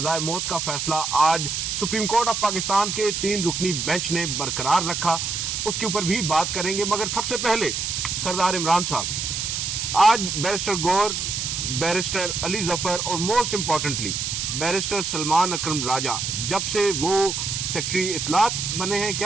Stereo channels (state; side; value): noise; right; hiss, 2 dB below the sound